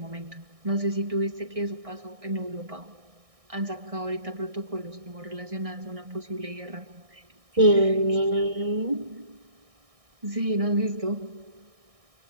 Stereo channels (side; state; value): left; late; 1.6 ms